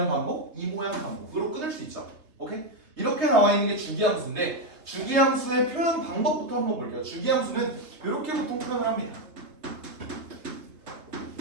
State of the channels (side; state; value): left; late; 3.1 ms